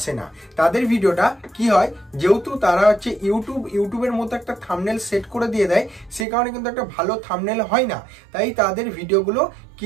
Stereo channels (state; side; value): drops out; left; at 6.2 s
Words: না। তাদের ভিডিওটা কি হয়, যেহেতু তারা হচ্ছে ইউটিউবের মতো একটা থাম্বনেল সেট করে দিয়ে দেয়, সে কারণে কিন্তু একটা ভালো থাম্বনেল হয় না। তাই তাদের ভিডিওগুলো